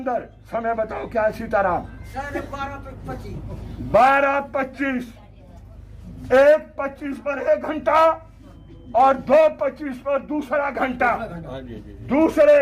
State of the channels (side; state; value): both; identical; correlation 1.00